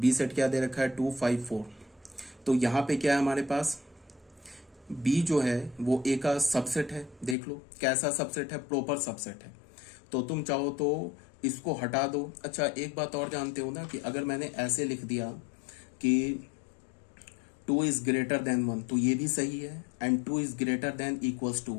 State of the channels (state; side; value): drops out; right; at 7.4 s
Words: सेट क्या दे रखा है 2 5 4। तो यहाँ पे क्या है हमारे पास, बी जो है वो ए का सबसेट है। देख लो कैसा सबसेट है, प्रॉपर सबसेट है। तो तुम चाहो तो इसको हटा दो। अच्छा, एक बात और जानते हो ना कि अगर मैंने ऐसे लिख दिया कि 2 इज ग्रेटर देन 1 तो ये भी सही है, and 2 is greater than equals to